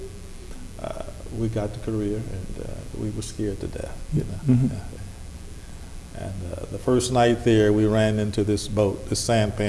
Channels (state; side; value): identical; both; correlation 1.00